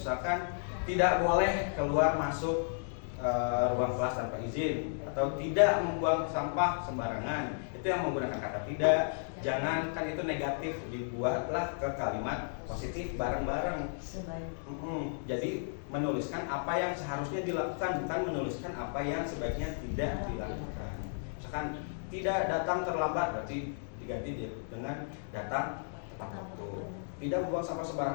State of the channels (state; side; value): silent; right; digital silence